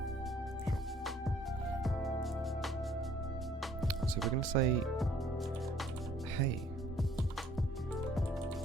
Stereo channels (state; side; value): normal; both; correlation 0.59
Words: Sure. So we're going to say, hey,